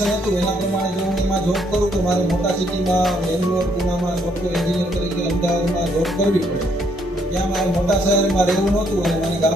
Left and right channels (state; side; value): normal; both; correlation 0.70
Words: હતું એના પ્રમાણે જો હું એમાં જોબ કરું તો મારે મોટા સિટીમાં બેંગ્લોર, પુનામાં સોફ્ટવેર એન્જિનિયર તરીકે અમદાવાદમાં જોબ કરવી પડે. ત્યાં મારે મોટા શહેરમાં રહેવું નહોતું અને મને